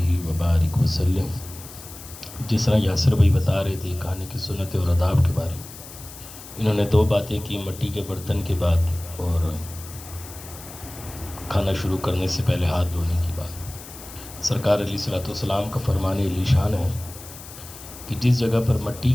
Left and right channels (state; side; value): noise; left; hiss, 15 dB below the sound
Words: وبارك وسلم۔ جس طرح یاسر بھائی بتا رہے تھے کھانے کی سنت اور آداب کے بارے میں، انہوں نے دو باتیں کی، مٹی کے برتن کے بعد اور کھانا شروع کرنے سے پہلے ہاتھ دھونے کی بات۔ سرکار علیہ الصلوۃ والسلام کا فرمان علی شان ہے کہ جس جگہ پر مٹی